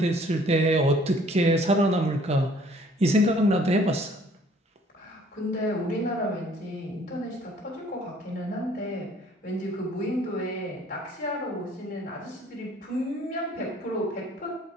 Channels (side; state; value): both; normal; correlation 0.57